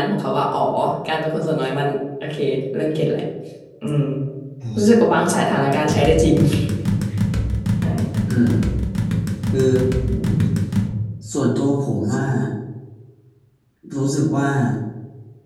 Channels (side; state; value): both; identical; correlation 1.00